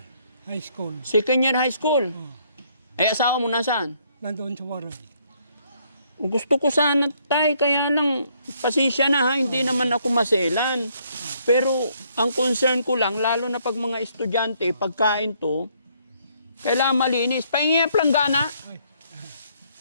high school. Second year high school. Oh. Eh, asawa mo nasaan? Nandoon sa Waray. Gusto ko sana tay, kaya lang pasensya na ha, hindi naman ako maselan. Pero ang concern ko lang, lalo na pag mga estudyante, pagkain to, kailangan malinis. Pahingi ang planggana.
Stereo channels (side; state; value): both; inverted; correlation -0.68